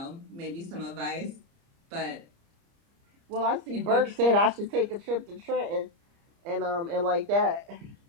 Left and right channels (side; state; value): left; late; 30 ms